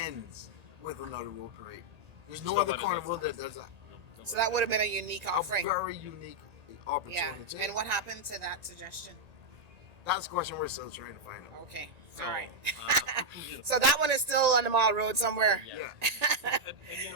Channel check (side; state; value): left; late; 1.8 ms